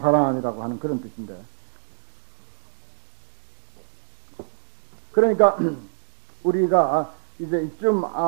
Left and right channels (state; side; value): silent; left; digital silence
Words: 하는 그런 뜻인데 그러니까 우리가 이제 이쯤